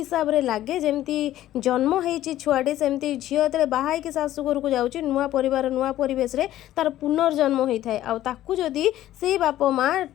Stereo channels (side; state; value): right; quieter; 13.6 dB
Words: ଲାଗେ ଯେମିତି ଜନ୍ମ ହେଇଛି ଛୁଆଟି, ସେମିତି ଝିଅ ଯେତେବେଳେ ବାହା ହେଇକି ଶାଶୁ ଘରକୁ ଯାଉଛି ନୂଆ ପରିବାର ନୂଆ ପରିବେଶରେ ତାର ପୁନର୍ଜନ୍ମ ହୋଇଥାଏ। ଆଉ ତାକୁ ଯଦି ସେଇ ବାପା ମା